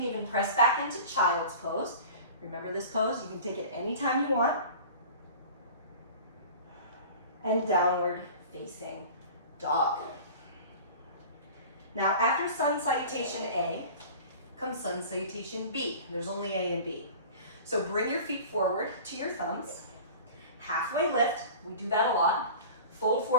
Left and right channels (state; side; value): inverted; both; correlation -0.40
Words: even press back into child's pose. Remember this pose? You can take it anytime you want. And downward facing dog. Now after sun salutation A, comes sun salutation B. There's only A and B. So bring your feet forward to your thumbs. Halfway lift, we do that a lot. Fold